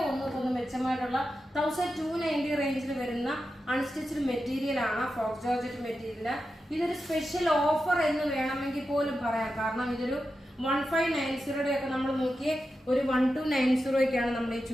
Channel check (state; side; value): normal; both; correlation 0.90